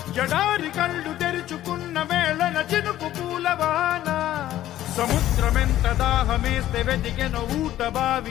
జడారి కళ్ళు తెరుచుకున్న వేళన చినుకు పూలవాన సముద్రమెంత దాహమేస్తే వెతికెను ఊట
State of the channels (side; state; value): right; quieter; 13.4 dB